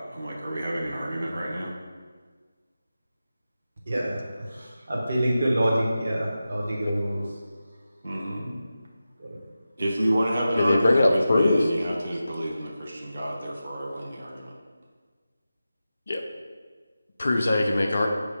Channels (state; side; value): inverted; both; correlation -0.93